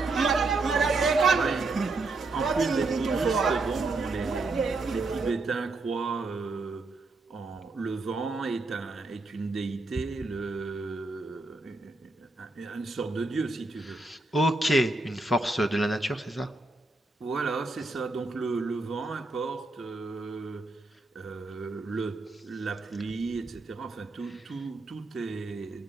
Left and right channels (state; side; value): quieter; left; 3.3 dB